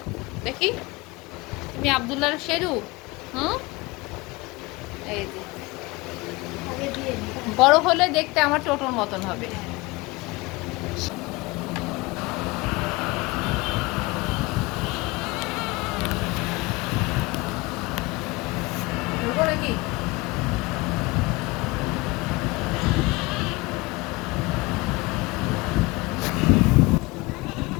দেখি তুমি আব্দুল্লাহ শেরু। হুম, এই যে বড় হলে দেখতে আমার টোটোর মতন হবে। ধরবো নাকি?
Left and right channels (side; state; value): right; quieter; 23.2 dB